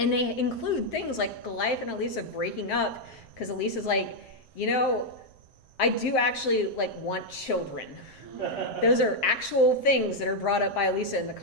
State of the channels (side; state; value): right; late; 7.6 ms